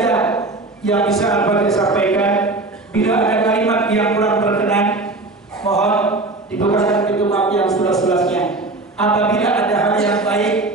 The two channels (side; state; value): left; quieter; 3.1 dB